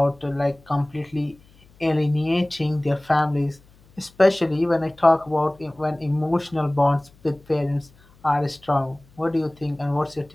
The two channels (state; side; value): noise; left; hum, 28 dB below the sound